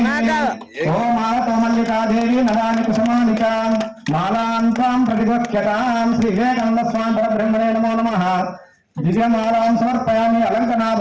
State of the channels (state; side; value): identical; both; correlation 1.00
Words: ఓం మాలతో మల్లికాదేవి నరాని కుసుమాలికాం మాలాంతాం ప్రతిగోక్యతాం శ్రీ వివేకానంద స్వామి పరబ్రహ్మణే నమో నమః దివ్యమాలాం సమర్పయామి